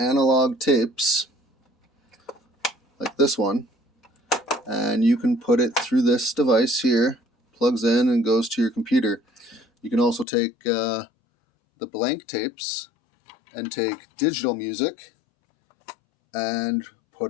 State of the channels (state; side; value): drops out; right; at 10.2 s